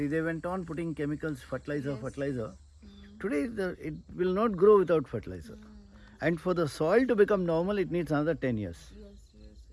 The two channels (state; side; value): identical; both; correlation 1.00